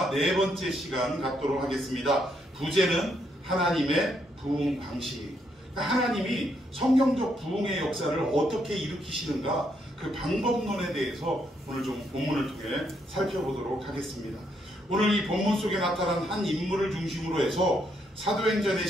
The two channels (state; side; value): normal; both; correlation 0.75